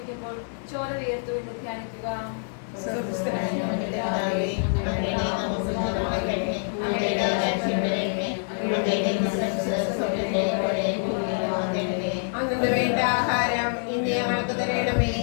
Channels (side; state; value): right; silent; digital silence